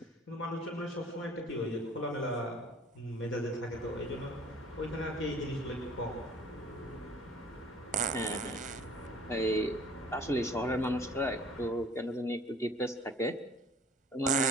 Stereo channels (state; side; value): normal; both; correlation 0.50